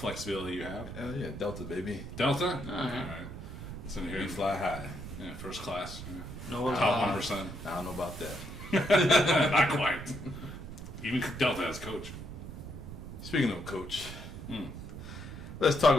you have. Yeah, Delta, baby. Delta? All right. It's in here. We fly high. Yeah, first class. Yeah. No, Top 1%. I don't know about that. Not quite. Even Delta has coach. Speaking of coach, let's talk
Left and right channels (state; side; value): noise; right; rumble, 10 dB below the sound